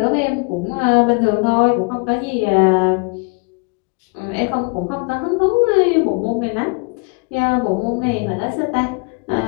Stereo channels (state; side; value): quieter; right; 32.2 dB